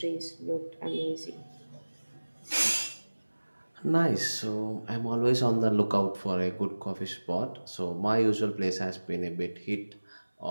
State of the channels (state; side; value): inverted; both; correlation -1.00